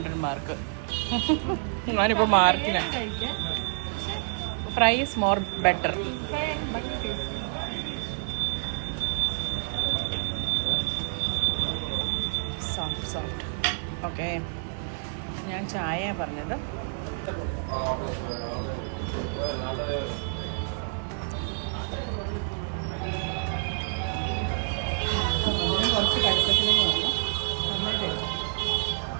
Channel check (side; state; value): left; silent; 59 dB below the other